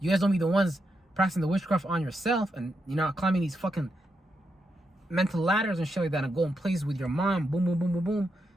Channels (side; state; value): both; normal; correlation 0.83